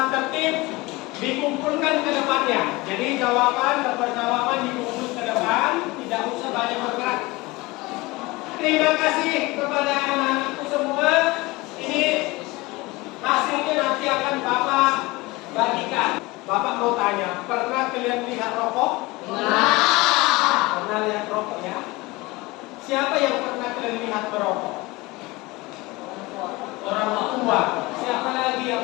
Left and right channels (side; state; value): right; quieter; 22.2 dB